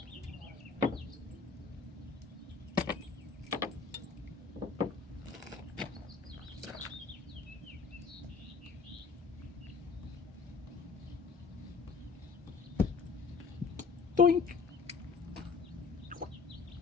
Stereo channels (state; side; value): quieter; right; 4.9 dB